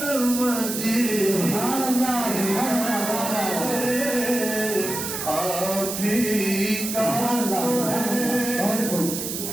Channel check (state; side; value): noise; right; hiss, 5 dB below the sound